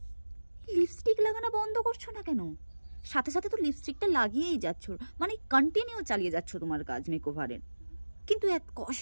লিপস্টিক লাগানো বন্ধ করছো না কেন? সাথে সাথে তো লিপস্টিকটা লাগিয়েই যাচ্ছ, মানে কন্টিনিউ চালিয়ে যাচ্ছ তোমার কাজ মেকওভারের, কিন্তু এত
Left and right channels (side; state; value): both; inverted; correlation -1.00